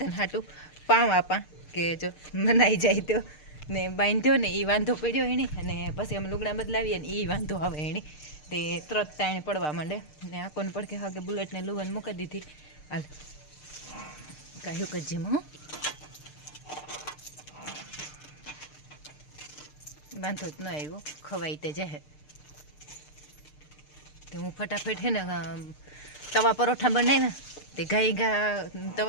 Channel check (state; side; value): late; right; 6.6 ms